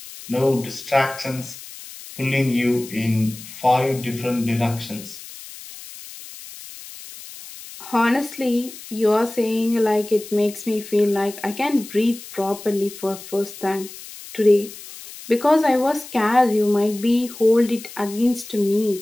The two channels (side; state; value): left; noise; hiss, 15 dB below the sound